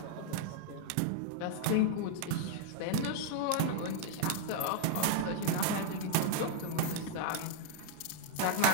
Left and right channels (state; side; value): different; both; correlation 0.00